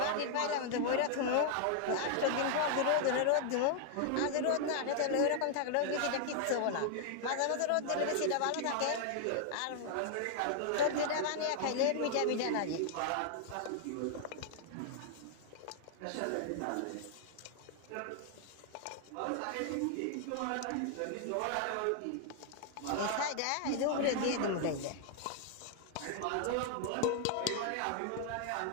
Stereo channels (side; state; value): both; different; correlation 0.00